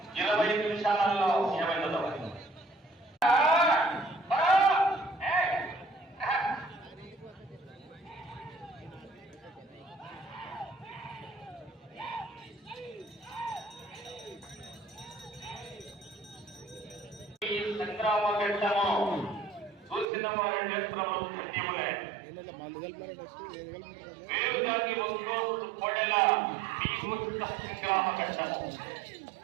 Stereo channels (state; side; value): drops out; left; at 20.1 s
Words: 25 నిమిషాలలో ఏమైందో. సంగ్రామ ఘట్టము చూసిన వారి నేత్రము పుణ్యములే. వేరుగాకి ఒంగోలు కొడల భీముష్ట సంగ్రామ ఘట్టము.